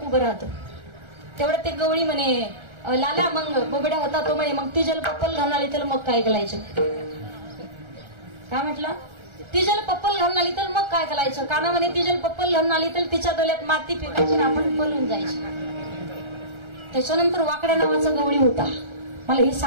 उभं राहतं. तेवढं ते गवळी म्हणे लाला मग बोबड्या होता तो म्हणे मग ती जल पप्पल घालून आली तर मग काय करायचं? काय म्हटलं? ती जल पप्पल घालून आली तर मग काय करायचं? काना म्हणे ती जल पप्पल घालून आली तर तिच्या डोल्यात माती फेकायची आणि आपण पळून जायचं. त्याच्यानंतर वाकड्या नावाचा गवळी होता. मला हे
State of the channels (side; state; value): left; late; 1.3 ms